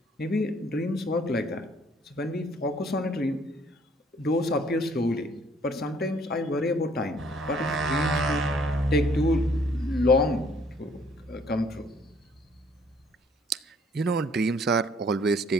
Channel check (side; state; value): both; normal; correlation 0.61